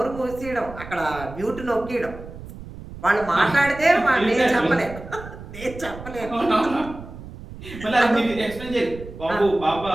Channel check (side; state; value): right; noise; rumble, 14 dB below the sound